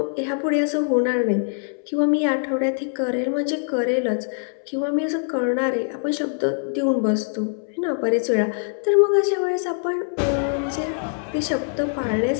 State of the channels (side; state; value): right; silent; 63 dB below the other